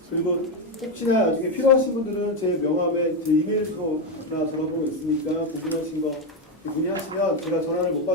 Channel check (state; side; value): normal; both; correlation 0.08